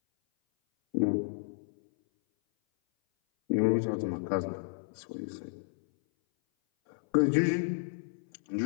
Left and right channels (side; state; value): right; silent; 57 dB below the other